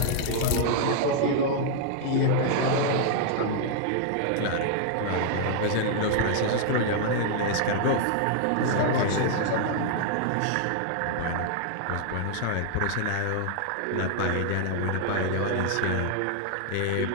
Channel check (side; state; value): both; different; correlation 0.00